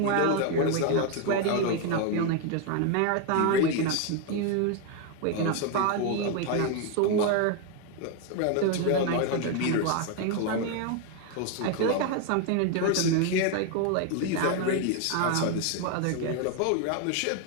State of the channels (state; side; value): different; both; correlation 0.01